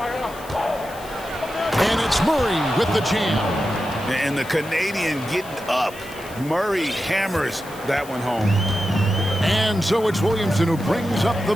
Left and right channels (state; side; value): noise; left; hiss, 19 dB below the sound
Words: And it's Murray with the jam. And the Canadian getting up. Murray hammers that one home. And so it's Williamson who brings up the